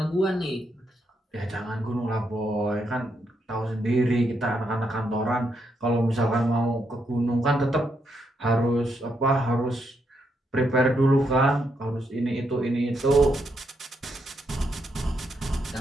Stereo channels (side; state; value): both; normal; correlation 0.79